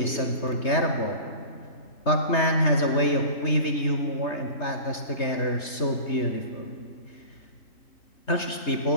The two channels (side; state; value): right; late; 3.3 ms